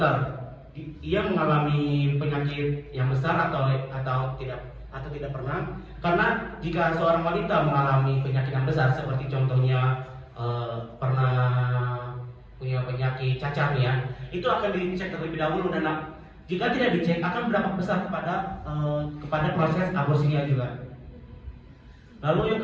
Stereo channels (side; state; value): both; identical; correlation 1.00